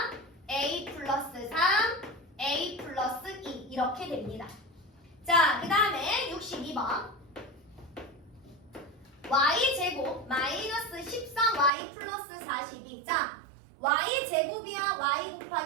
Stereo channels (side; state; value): left; drops out; at 11.7 s